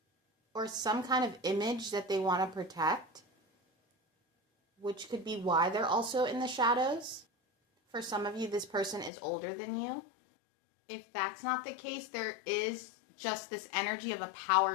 or some kind of image that they want to protect, which could be why they're also in the shadows. For some of you, this person is older than you. If that's not the case, there is just this energy of a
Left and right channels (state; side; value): drops out; right; at 9.1 s